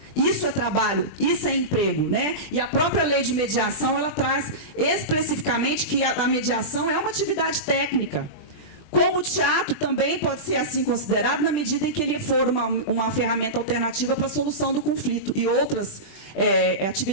Isso é trabalho, isso é emprego, né? E a própria lei de mediação, ela traz especificamente que a mediação é uma atividade técnica. Como o teatro também pode ser assim considerado na medida em que ele for uma ferramenta alternativa para a solução do conflito e outras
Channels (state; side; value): late; right; 20 ms